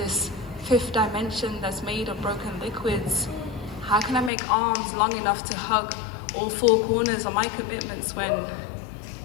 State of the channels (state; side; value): drops out; right; at 4.3 s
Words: 5th dimension that's made of broken liquids? How can I make arms long enough to hug all 4 corners of my commitments when